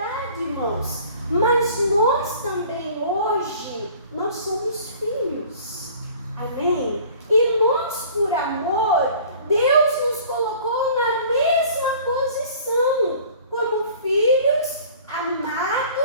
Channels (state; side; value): inverted; both; correlation -0.48